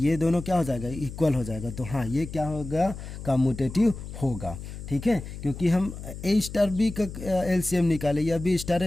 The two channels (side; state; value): left; noise; hum, 10 dB below the sound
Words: दोनों क्या हो जाएगा इक्वल हो जाएगा। तो हाँ ये क्या होगा कम्यूटेटिव होगा। ठीक है, क्योंकि हम ए स्टार बी का LCM निकाले या बी स्टार